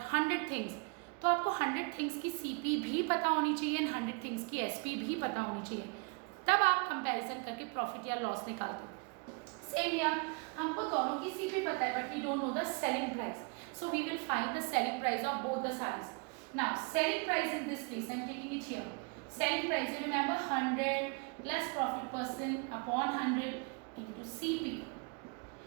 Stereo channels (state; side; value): quieter; left; 32.9 dB